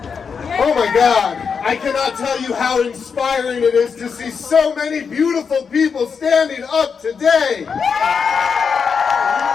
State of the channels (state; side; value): quieter; right; 6.0 dB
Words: Oh my God, I cannot tell you how inspiring it is to see so many beautiful people standing up today.